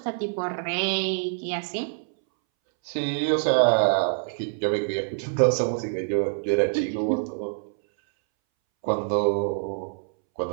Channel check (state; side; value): silent; left; 61 dB below the other